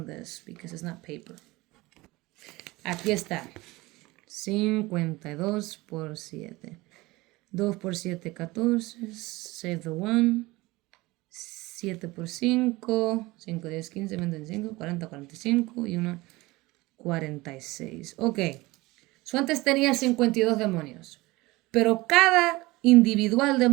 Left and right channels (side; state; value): left; quieter; 21.0 dB